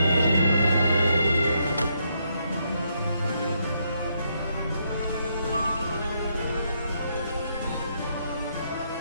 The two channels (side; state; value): both; inverted; correlation -0.76